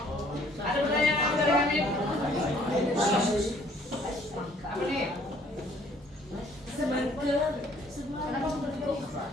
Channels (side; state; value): both; normal; correlation 0.60